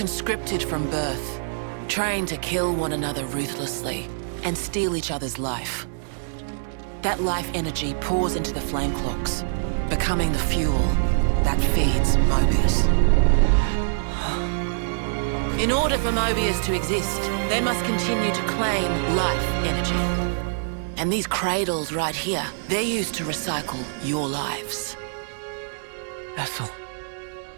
from birth, trained to kill one another ruthlessly and steal each other's life. That life energy pours into the flame clocks, becoming the fuel that feeds Mobius. In order for Mobius to exist, they must continue to claim life energy. And these cradles right here, they're used to recycle your lives. Ethel.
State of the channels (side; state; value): left; silent; 62 dB below the other